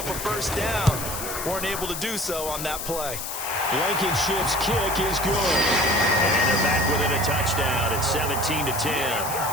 a first down. Weren't able to do so on that play. Blankenship's kick is good. And they're back within a touchdown at 17-10.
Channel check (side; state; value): left; noise; hiss, 6 dB below the sound